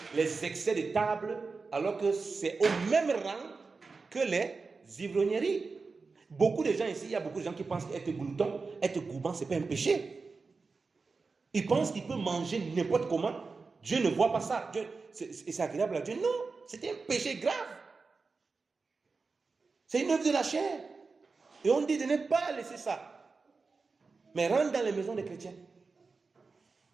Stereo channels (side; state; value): left; quieter; 4.3 dB